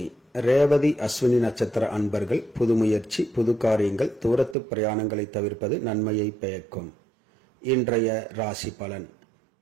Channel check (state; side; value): drops out; left; at 4.5 s